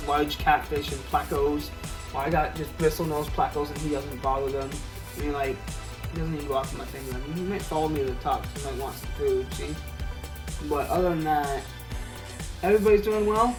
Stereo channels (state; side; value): identical; both; correlation 1.00